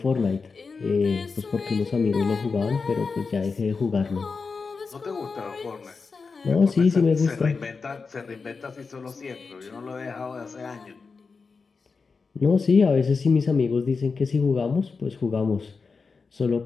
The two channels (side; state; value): right; quieter; 4.7 dB